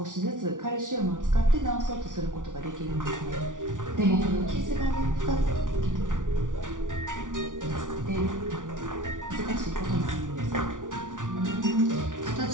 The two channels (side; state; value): left; late; 0.88 ms